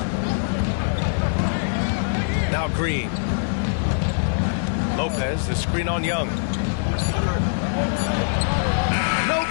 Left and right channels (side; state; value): right; silent; digital silence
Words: Now Green. Lopez, the screen on Young. No